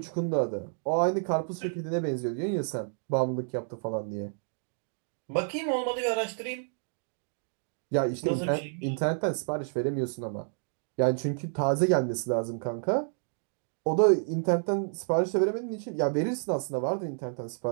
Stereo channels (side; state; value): left; silent; digital silence